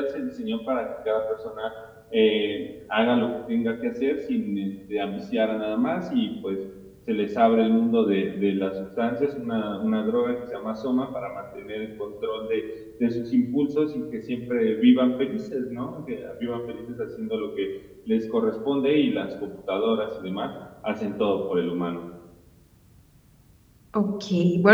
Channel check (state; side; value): identical; both; correlation 1.00